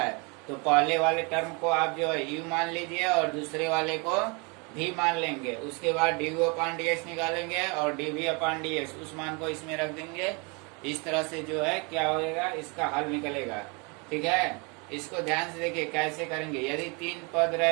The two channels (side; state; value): left; quieter; 31.4 dB